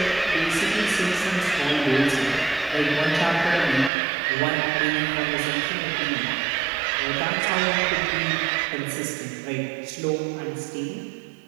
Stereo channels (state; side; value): drops out; left; at 3.9 s